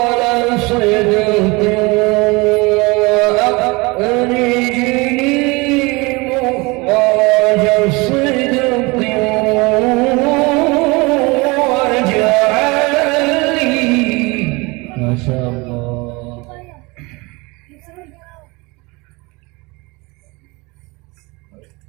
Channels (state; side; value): quieter; left; 25.4 dB